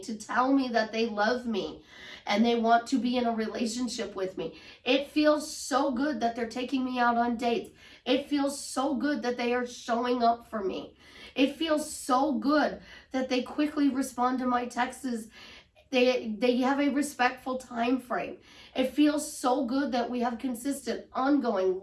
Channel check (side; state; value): both; identical; correlation 1.00